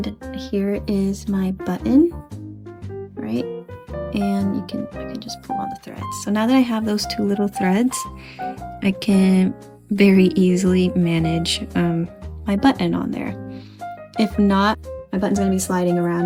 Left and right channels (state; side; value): identical; both; correlation 1.00